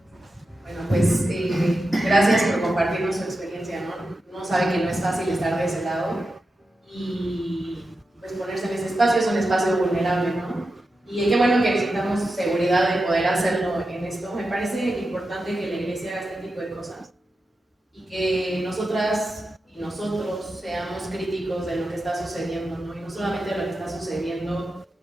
Bueno, pues gracias por compartirnos su experiencia, ¿no? Uno sabe que no es fácil estar de ese lado y pues ponerse en ese espacio es un espacio vulnerable, ¿no? Y qué bueno que necesitamos seguridad de poder hacerlo en esto. Me parece importante que la iglesia haga este tipo de cosas y que nosotras y nosotros seamos críticos de lo que está sucediendo, ¿no? Y no solamente de lo que está sucediendo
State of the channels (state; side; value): normal; both; correlation 0.90